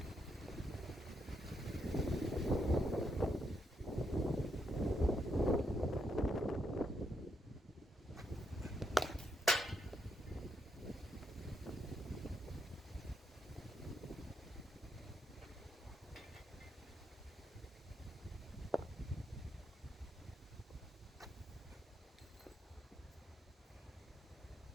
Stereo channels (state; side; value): normal; both; correlation 0.78